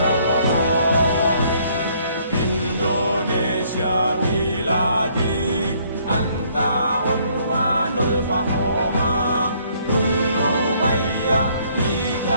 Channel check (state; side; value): inverted; both; correlation -0.64